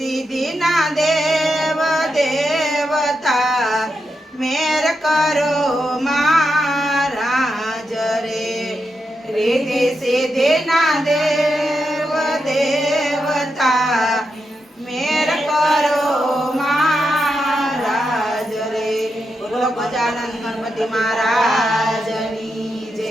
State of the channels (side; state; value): both; normal; correlation 0.86